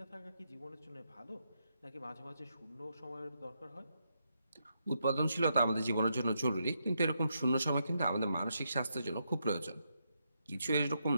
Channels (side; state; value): both; inverted; correlation -0.81